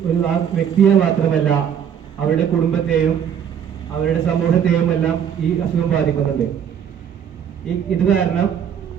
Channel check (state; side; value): quieter; left; 8.4 dB